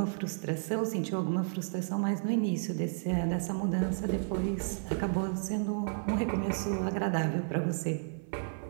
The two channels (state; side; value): silent; left; 56 dB below the other